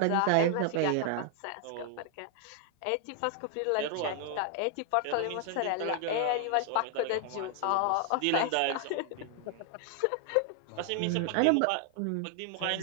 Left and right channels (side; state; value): both; different; correlation 0.00